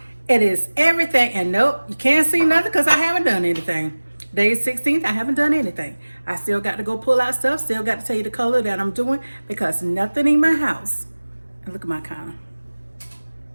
It is everything. And nope, you can't see nothing because I haven't done anything. Day 16th, I haven't done anything. I still got to go pull out stuff. Still got to tell you the color that I'm doing because nothing in my house. And look at my counter.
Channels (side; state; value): both; inverted; correlation -1.00